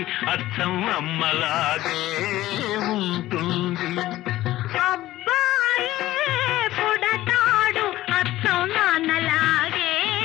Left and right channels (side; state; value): right; quieter; 15.6 dB